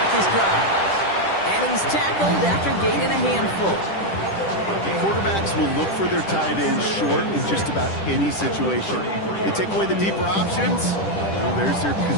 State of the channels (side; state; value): right; late; 10 ms